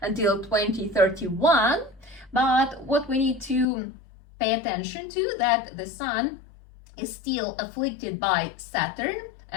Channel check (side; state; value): right; drops out; at 3.7 s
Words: until 2031. But what we need to pay attention to, that the Sun is still afflicted by Saturn,